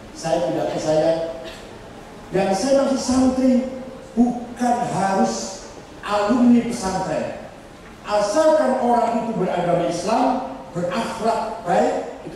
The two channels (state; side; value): identical; both; correlation 1.00